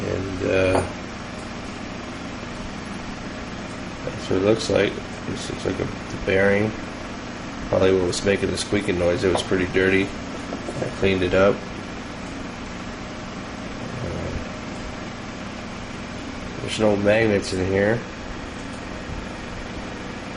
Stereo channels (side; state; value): both; identical; correlation 1.00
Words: that's what it looks like. This looks like the bearing, probably what was making the squeaking noise. It was pretty dirty. I cleaned it up. There's no magnets in here.